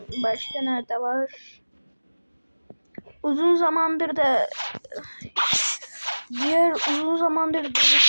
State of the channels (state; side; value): inverted; both; correlation -1.00